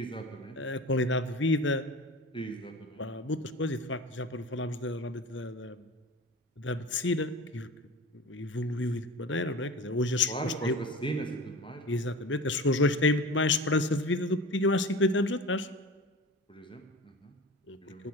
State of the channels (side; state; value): both; normal; correlation 0.33